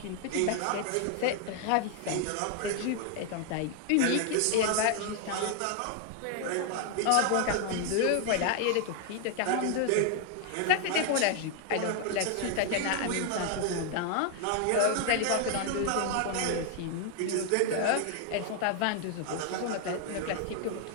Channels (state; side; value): different; both; correlation 0.00